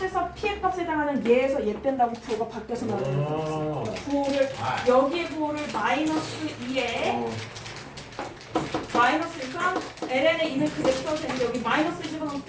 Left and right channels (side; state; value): both; identical; correlation 1.00